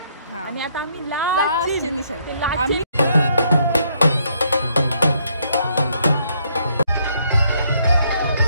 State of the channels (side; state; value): both; inverted; correlation -0.71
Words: आणि आता आम्ही लास्ट निशाणी